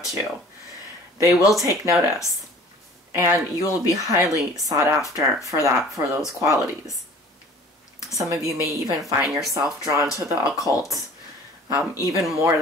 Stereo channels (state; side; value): normal; both; correlation 0.47